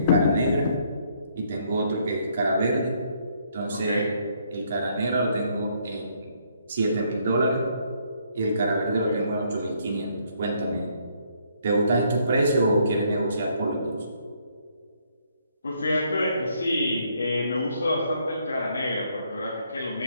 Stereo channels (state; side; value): inverted; both; correlation -0.69